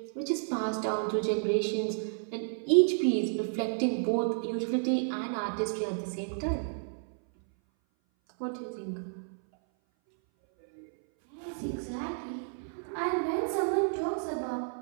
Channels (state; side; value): silent; left; 57 dB below the other